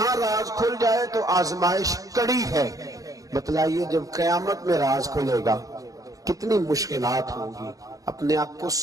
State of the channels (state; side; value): late; left; 0.17 ms